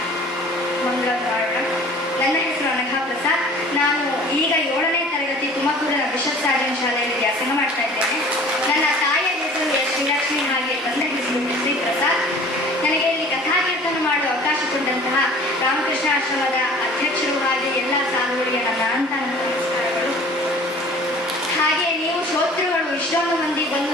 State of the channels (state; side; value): normal; both; correlation 0.47